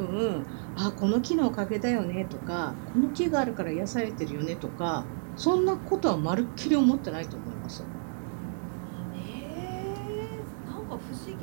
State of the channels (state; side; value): silent; left; 58 dB below the other